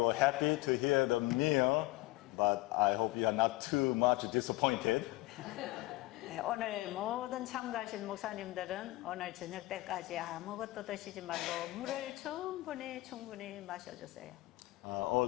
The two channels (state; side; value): quieter; right; 19.9 dB